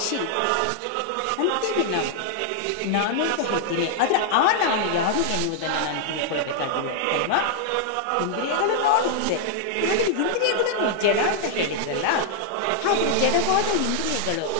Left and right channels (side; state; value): both; different; correlation -0.01